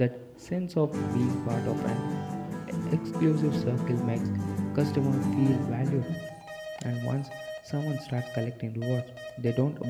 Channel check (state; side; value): identical; both; correlation 1.00